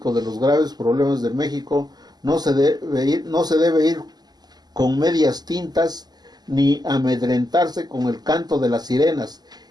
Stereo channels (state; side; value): late; left; 0.20 ms